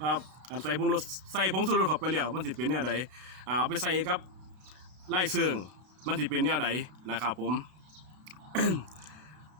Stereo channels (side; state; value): left; late; 32 ms